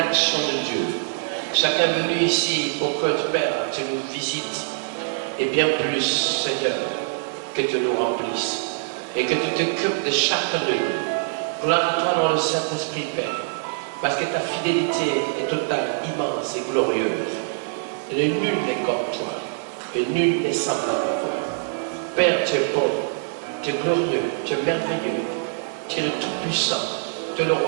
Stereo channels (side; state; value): left; silent; digital silence